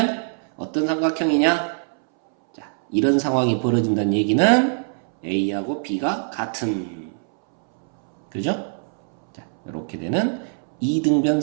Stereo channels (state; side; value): silent; left; 64 dB below the other